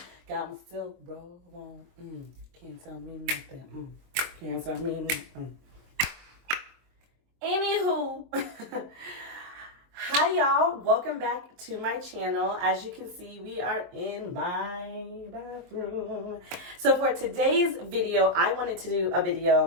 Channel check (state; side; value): late; left; 23 ms